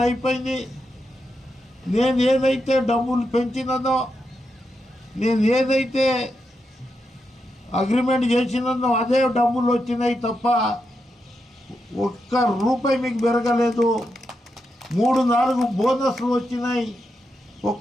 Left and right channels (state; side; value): normal; both; correlation 0.85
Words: అయిపోయింది. నేను ఏదైతే డబ్బులు పెంచినదో, నేను ఏదైతే అగ్రిమెంట్ చేసినదో అదే డబ్బులు వచ్చినాయి తప్ప ఒక్క రూపాయి మీకు పెరగలేదు. 3-4 బోనస్లు వచ్చినాయి,